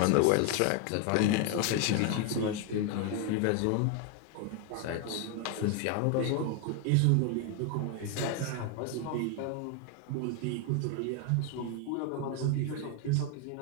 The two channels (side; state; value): both; different; correlation 0.01